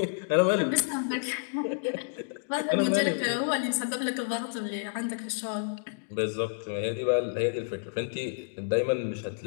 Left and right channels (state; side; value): silent; right; digital silence